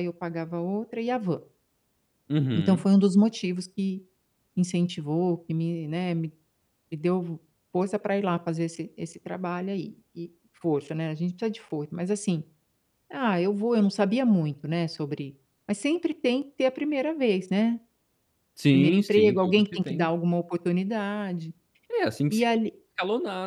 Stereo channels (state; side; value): identical; both; correlation 1.00